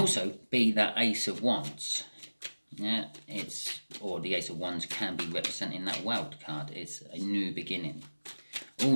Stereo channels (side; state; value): both; inverted; correlation -1.00